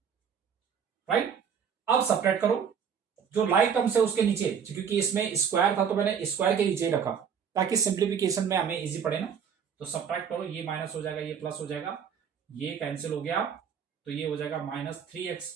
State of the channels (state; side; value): quieter; left; 7.3 dB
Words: राइट। अब सब्ट्रैक्ट करो, जो लाइक टर्म्स है उसके नीचे, क्योंकि इसमें स्क्वायर था तो मैंने स्क्वायर के नीचे रखा ताकि सिंप्लीफिकेशन में हमें इजी पड़े ना। तो सब्ट्रैक्ट करो, ये माइनस हो जाएगा, ये प्लस हो जाएगा, ये कैंसिल हो गया, तो ये हो जाएगा माइनस 3x